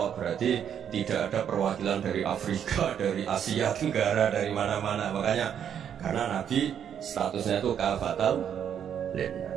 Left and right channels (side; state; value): left; quieter; 8.8 dB